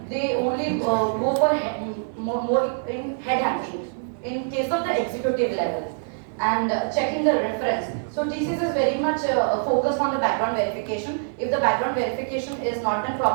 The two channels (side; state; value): left; silent; digital silence